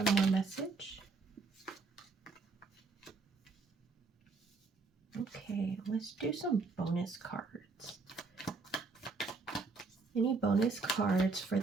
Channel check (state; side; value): quieter; left; 4.1 dB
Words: more message. Okay, let's do some bonus cards. Any bonus cards for